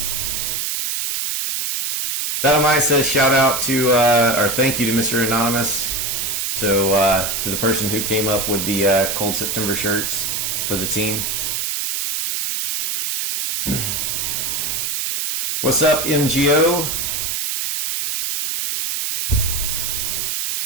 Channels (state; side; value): noise; right; hiss, 1 dB below the sound